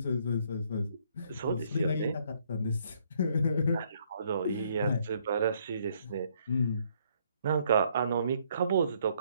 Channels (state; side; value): inverted; both; correlation -0.68